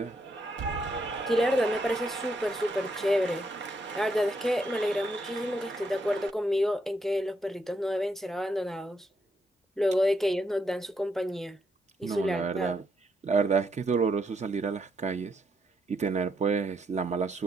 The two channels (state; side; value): normal; both; correlation 0.77